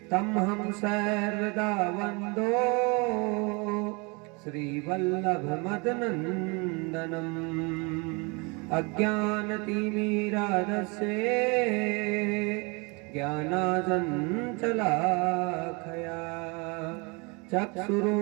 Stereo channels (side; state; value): left; quieter; 29.8 dB